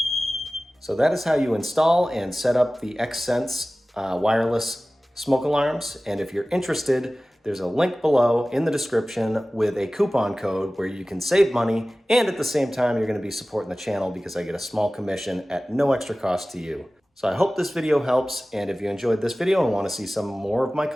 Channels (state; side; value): normal; both; correlation 0.97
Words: So that is how you install and set up the Xsense wireless smoke alarms. And if you're interested, there's a link below in the description with a coupon code where you can save money, and at the same time, you're gonna be supporting the channel because I get a small commission at no extra cost to you. So I hope this video helps, and if you enjoyed this video and wanna see some more of my